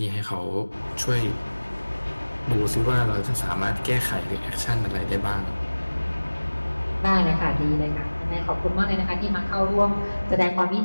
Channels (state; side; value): inverted; both; correlation -1.00